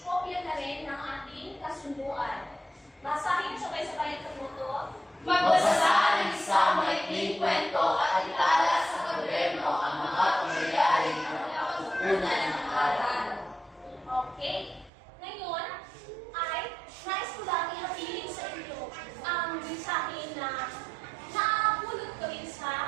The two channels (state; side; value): drops out; left; at 14.9 s